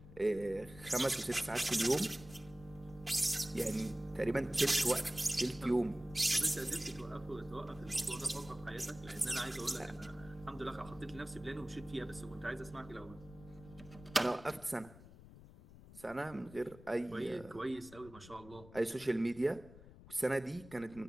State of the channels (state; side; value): noise; left; rumble, 18 dB below the sound